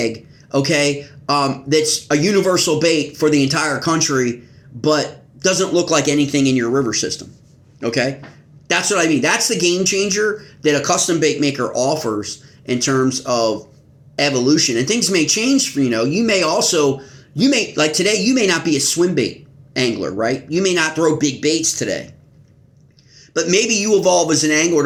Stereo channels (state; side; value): identical; both; correlation 1.00